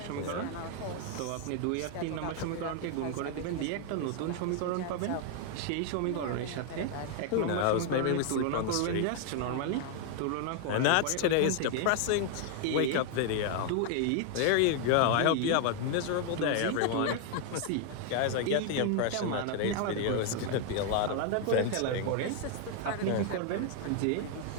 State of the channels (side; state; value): both; different; correlation 0.01